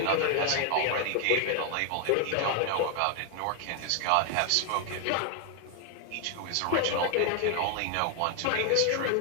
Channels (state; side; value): different; both; correlation 0.01